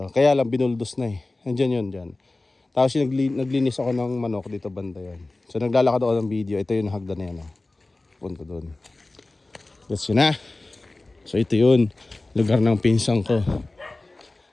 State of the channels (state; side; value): quieter; right; 3.0 dB